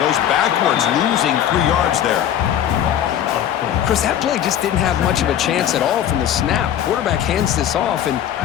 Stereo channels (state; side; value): quieter; right; 10.4 dB